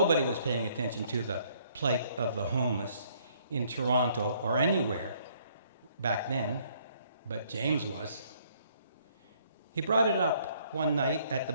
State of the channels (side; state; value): both; inverted; correlation -0.64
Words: was paying attention to the plight of the homeless in Toronto or anywhere back then, but James was. He brought it up one night at the